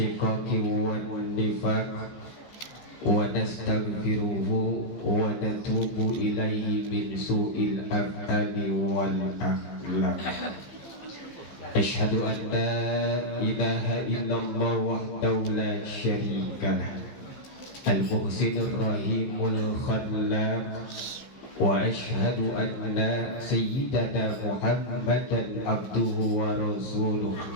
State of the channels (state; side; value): late; right; 15 ms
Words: wan nifaq wa nastaghfiruhu wa natubu ilaihi min su'il af'ali wal akhlaq. Asyhadu an la ilaha illallah wahdahu la syarikalah al-muhsinur rahimul khallaq wa asyhadu anna sayyidana Muhammadan abduhu wa rasuluh